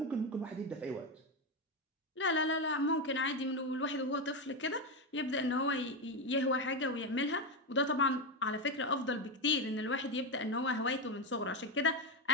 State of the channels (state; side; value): normal; both; correlation 0.11